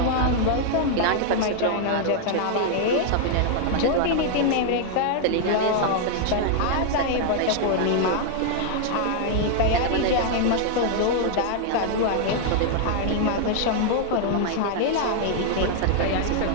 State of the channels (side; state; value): both; different; correlation 0.00